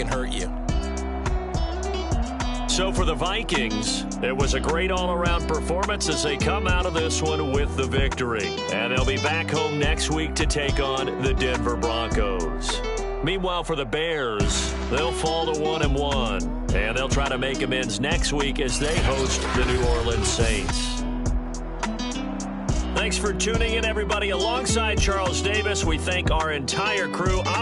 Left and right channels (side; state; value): both; identical; correlation 1.00